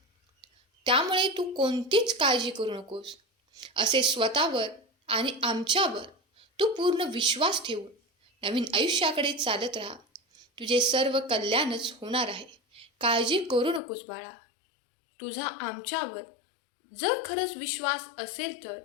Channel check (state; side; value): drops out; right; at 13.8 s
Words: त्यामुळे तू कोणतीच काळजी करू नकोस. असे स्वतःवर आणि आमच्यावर तू पूर्ण विश्वास ठेवून नवीन आयुष्याकडे चालत राहा. तुझे सर्व कल्याणच होणार आहे. काळजी करू नकोस बाळा. तुझा आमच्यावर जर खरंच विश्वास असेल तर